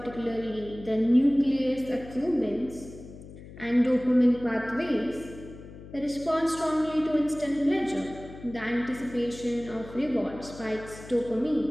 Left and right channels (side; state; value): left; noise; hum, 16 dB below the sound